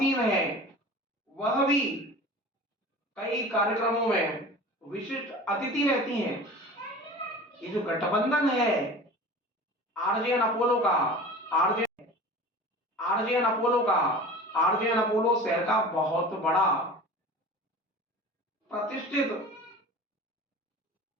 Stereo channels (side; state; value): both; normal; correlation 0.38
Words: है, वह भी कई कार्यक्रमों में विशिष्ट अतिथि रहती हैं। ये जो गठबंधन है आरजेएन अपोलो का, आरजेएन अपोलो का, आरजेएन अपोलो शहर का बहुत बड़ा प्रतिष्ठित